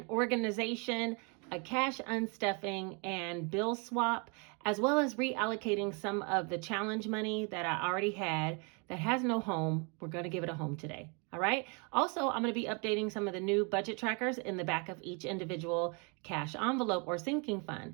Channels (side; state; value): left; quieter; 33.8 dB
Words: organization, a cash unstuffing and bill swap, as well as reallocating some of the challenge money that I already had that has no home. We're going to give it a home today. All right. Also, I'm going to be updating some of the new budget trackers in the back of each individual cash envelope or sinking